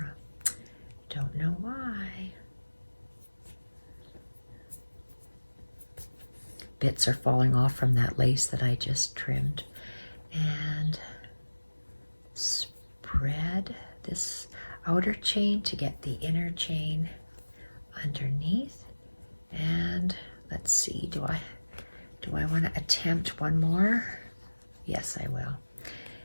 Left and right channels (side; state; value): both; inverted; correlation -1.00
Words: Don't know why. Bits are falling off from that lace that I just trimmed. And spread this outer chain to get the inner chain underneath. And let's see, do I want to attempt one more? Yes, I will.